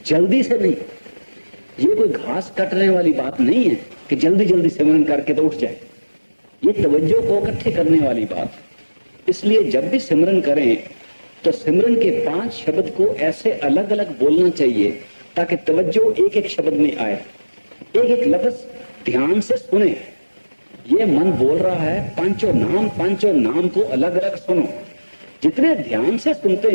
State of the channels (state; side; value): inverted; both; correlation -1.00